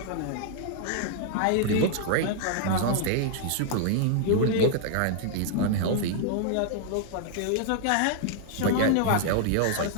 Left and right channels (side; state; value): both; different; correlation -0.01